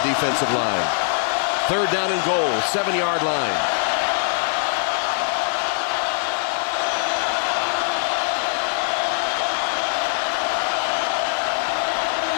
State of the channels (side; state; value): right; silent; 61 dB below the other